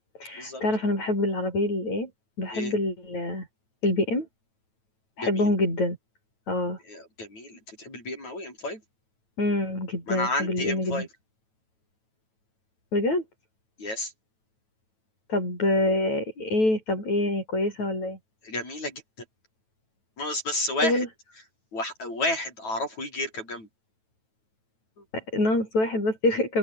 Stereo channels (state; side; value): late; right; 9.2 ms